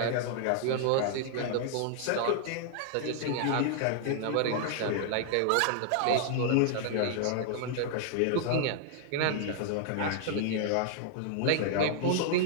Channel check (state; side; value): different; both; correlation -0.01